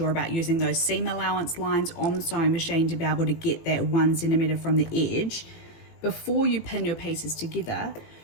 about using those seam allowance lines on the sewing machine to be able to get that 1 centimeter from the edge, before you pin your pieces together,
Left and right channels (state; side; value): late; right; 18 ms